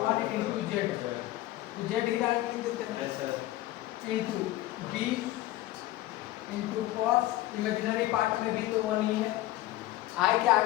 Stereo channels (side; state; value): right; quieter; 16.2 dB